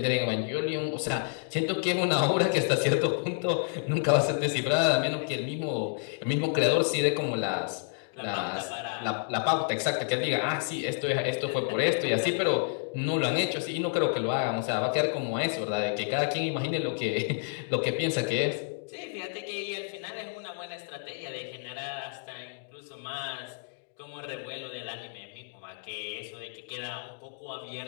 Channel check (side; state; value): right; silent; digital silence